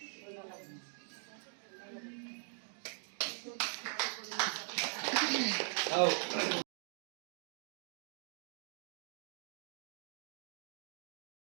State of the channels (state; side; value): silent; left; 50 dB below the other